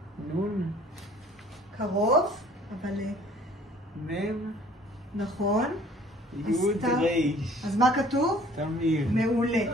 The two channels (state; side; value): normal; both; correlation 0.54